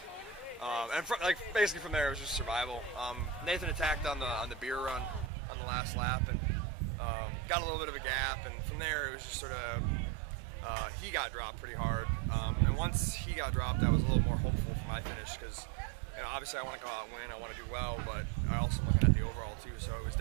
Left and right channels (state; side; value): drops out; left; at 5.3 s